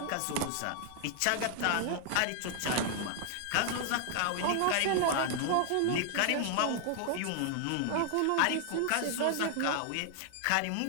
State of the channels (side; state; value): both; different; correlation 0.00